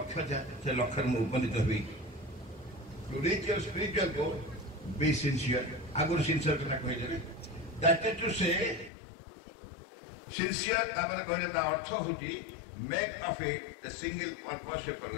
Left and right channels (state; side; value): drops out; right; at 8.9 s